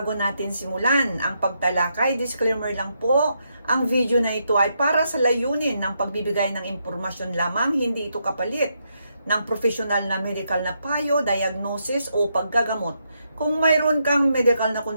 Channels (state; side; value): inverted; both; correlation -0.80